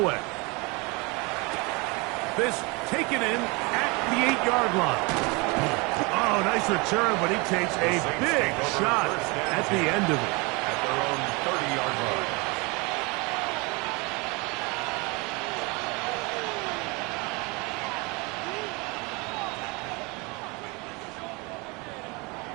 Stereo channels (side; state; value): left; quieter; 27.8 dB